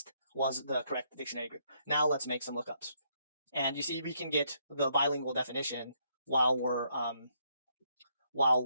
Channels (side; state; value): both; inverted; correlation -0.73